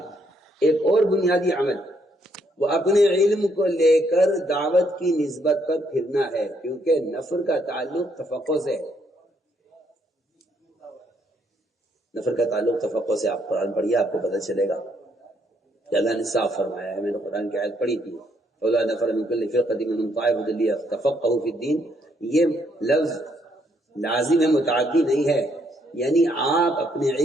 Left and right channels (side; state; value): both; normal; correlation 0.72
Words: ایک اور بنیادی عمل وہ اپنے علم کو لے کر دعوت کی نسبت پر پھرنا ہے، کیونکہ نفر کا تعلق تفقہ سے ہے۔ نفر کا تعلق تفقہ سے۔ آپ قرآن پڑھیے، آپ کو پتہ چلے گا کہ اللہ نے صاف فرمایا ہے۔ میں نے قرآن کی آیت پڑھی تھی، فَلَا نَفَرَ مِنْ كُلِّ فِرْقَةٍ مِنْهُمْ طَائِفَةٌ لِيَتَفَقَّهُوا فِي الدِّينِ، یہ لفظ لازم ہے، متعدی نہیں ہے، یعنی آپ اپنے